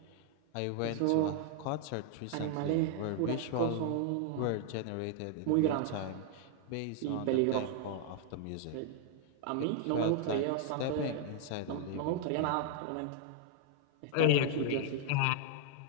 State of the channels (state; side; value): different; both; correlation 0.00